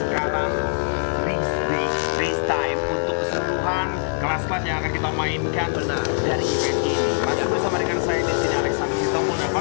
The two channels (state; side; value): silent; right; 64 dB below the other